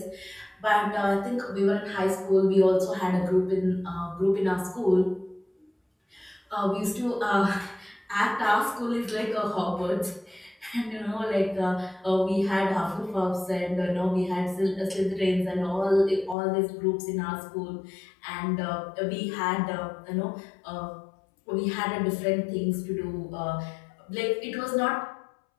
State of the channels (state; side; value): drops out; right; at 16.4 s